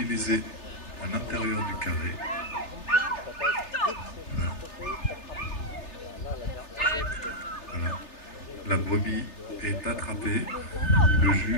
à l'intérieur du carré. Voilà. Voilà. La brebis est attrapée. Le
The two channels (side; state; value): right; late; 3.4 ms